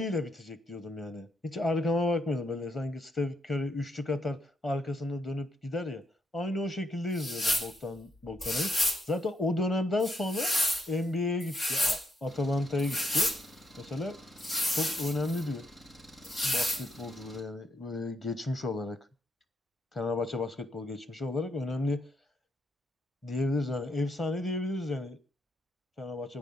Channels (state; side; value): normal; both; correlation 0.77